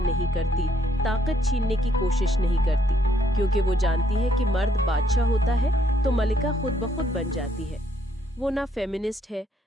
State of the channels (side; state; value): both; normal; correlation 0.71